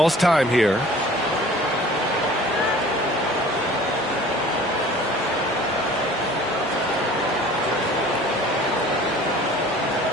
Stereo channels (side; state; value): right; noise; hum, 29 dB below the sound